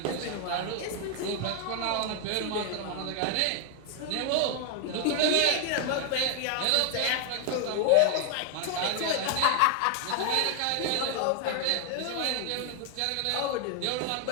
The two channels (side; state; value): both; different; correlation 0.00